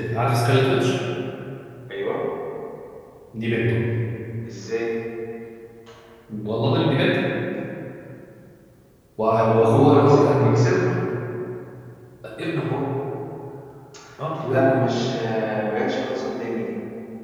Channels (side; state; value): both; identical; correlation 1.00